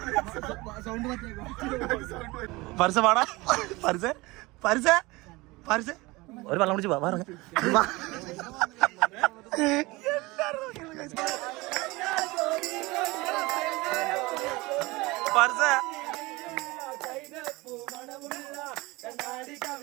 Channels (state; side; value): quieter; left; 22.4 dB